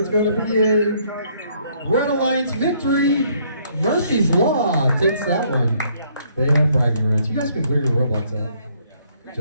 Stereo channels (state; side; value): inverted; both; correlation -0.66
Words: going to be a Red Alliance victory. Murphy's Law takes that one. They have bragging rights. You guys can clear your robots out. Good